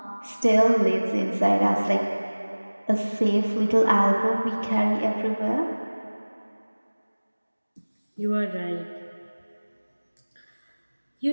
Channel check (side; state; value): both; inverted; correlation -1.00